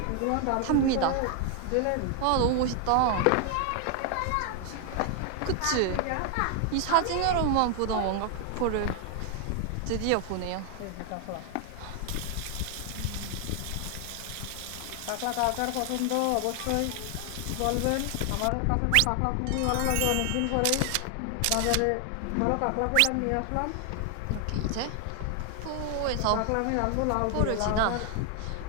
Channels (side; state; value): both; different; correlation 0.00